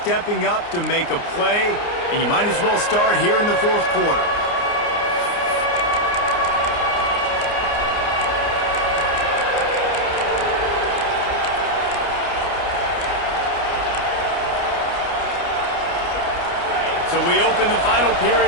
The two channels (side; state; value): right; late; 29 ms